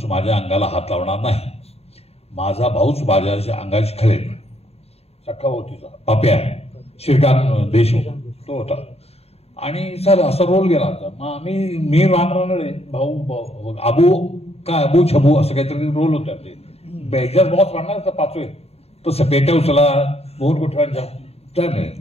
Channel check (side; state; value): right; late; 0.30 ms